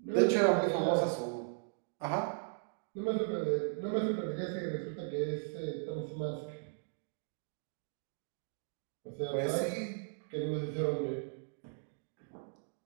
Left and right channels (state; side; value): silent; left; digital silence